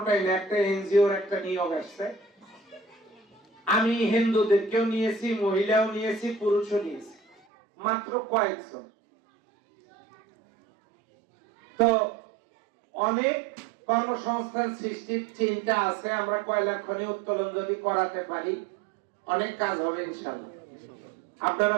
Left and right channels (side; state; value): left; drops out; at 7.4 s